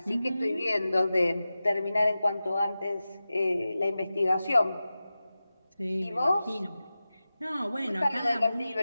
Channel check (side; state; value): both; inverted; correlation -0.94